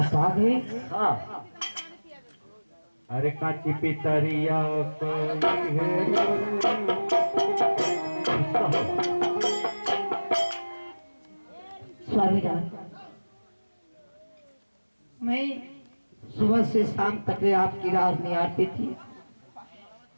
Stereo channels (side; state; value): both; inverted; correlation -1.00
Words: आ गए? हाँ, अरे काची पितरिया कोई है। स्वामीनाथ, मैं सुबह से शाम तक आपकी राह निहारती थी,